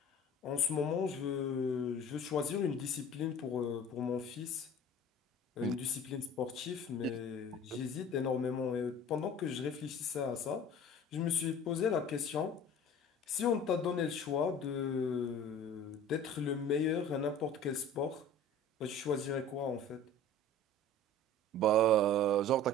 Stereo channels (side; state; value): both; normal; correlation 0.43